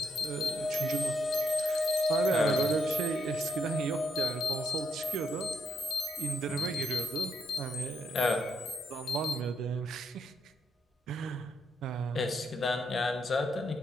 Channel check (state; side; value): normal; both; correlation 0.77